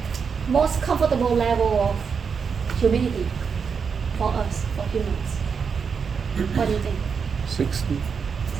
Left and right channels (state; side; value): quieter; left; 6.0 dB